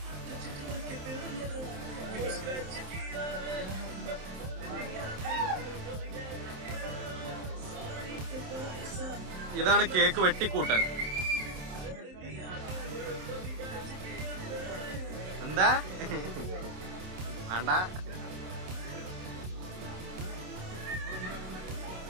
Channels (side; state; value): left; late; 27 ms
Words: ഇതാണ് കേക്ക് വെട്ടിക്കൂട്ടൽ. എന്താ വേണ്ട?